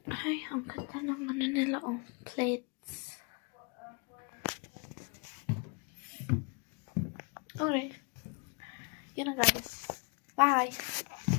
Ay, ang ganda ng ano nila, oh. Plates. Okay. Yun na, guys. Bye!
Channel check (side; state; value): right; quieter; 33.9 dB